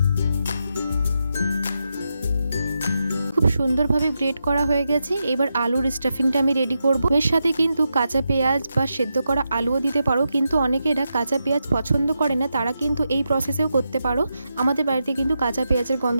সুন্দরভাবে গ্রেট করা হয়ে গেছে। এবার আলুর স্টাফিংটা আমি রেডি করব। এর সাথে কিন্তু কাঁচা পেঁয়াজ বা সেদ্ধ করা আলুও দিতে পারো, কিন্তু অনেকেরা কাঁচা পেঁয়াজ পছন্দ করে না, তারা কিন্তু এই প্রসেসেও করতে পারো। আমাদের বাড়িতে কিন্তু কাঁচা পেঁয়াজের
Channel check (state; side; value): inverted; both; correlation -0.86